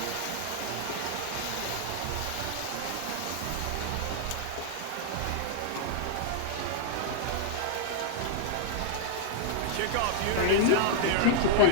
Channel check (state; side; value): different; both; correlation -0.01